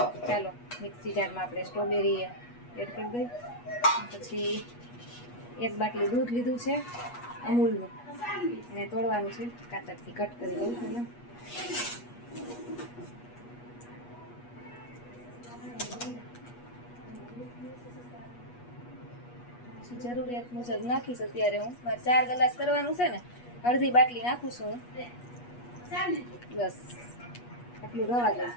ચાલો મિક્સી જારમાં આપણે સ્ટ્રોબેરી એડ કરી દઈએ. પછી એક બાટલી દૂધ લીધું છે અમૂલનું, એને તોડવાનું છે, કાતરથી કટ કરી દઉં પહેલાં. જરૂરિયાત મુજબ નાખીશ. અત્યારે હું મારે 4 ગ્લાસ કરવાનું છે ને, અડધી બાટલી નાખું છું હું. બસ આટલું રવા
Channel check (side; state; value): right; late; 8.3 ms